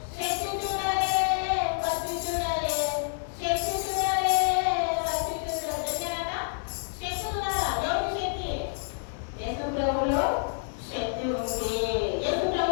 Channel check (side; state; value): right; silent; 58 dB below the other